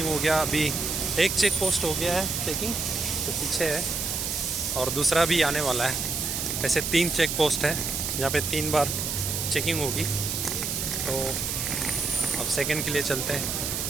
हो गया। अभी एक चेक पोस्ट हो गया है चेकिंग, तो पीछे है, और दूसरा भी आने वाला है। ऐसे 3 चेक पोस्ट है जहाँ पे 3 बार चेकिंग होगी। तो अब सेकंड के लिए चलते हैं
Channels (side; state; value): right; noise; hiss, 2 dB below the sound